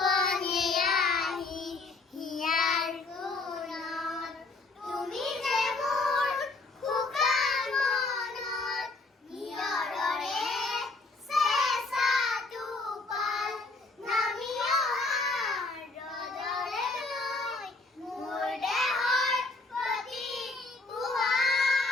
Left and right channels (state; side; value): quieter; right; 3.4 dB